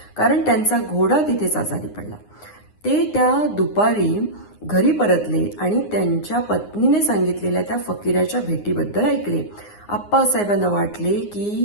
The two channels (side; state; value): right; late; 9.7 ms